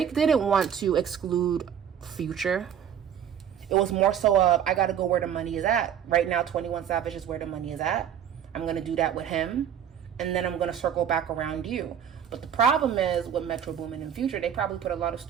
didn't want to exclude Future. It was more so of, I got to go where the money is at. Right now, 21 Savage is where the money is at. I'm going to do that with him. And then I'm going to circle back around you. But the problem is with Metro Boomin and Future, they probably put a lot of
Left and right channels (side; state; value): left; quieter; 9.0 dB